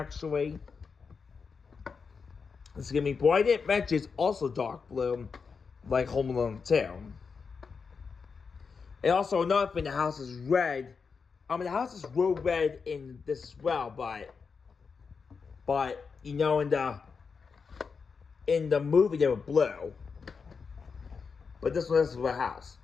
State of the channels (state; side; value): quieter; right; 5.4 dB